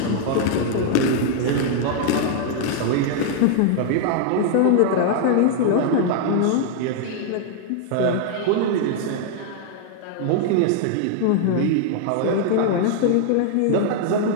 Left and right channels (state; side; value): different; both; correlation 0.00